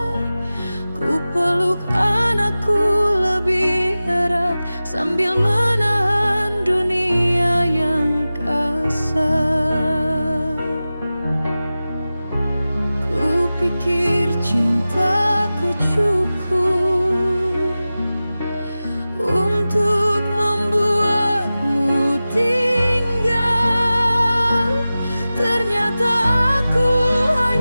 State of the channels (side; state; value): both; inverted; correlation -0.96